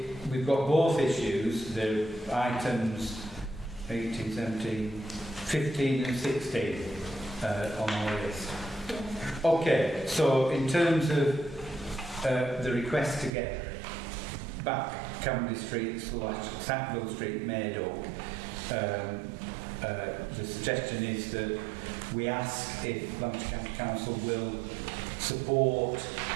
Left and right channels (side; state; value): left; drops out; at 13.3 s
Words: we've got both issues, the items 18, 17, 15 and 16 on our list. Okay, so in terms of the request to get back Camberley Street / Sackville Street made up, the suggestion is that we ask if Lancashire County Council will support